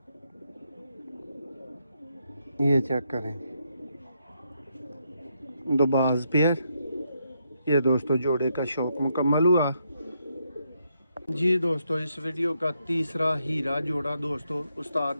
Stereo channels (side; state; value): both; inverted; correlation -0.78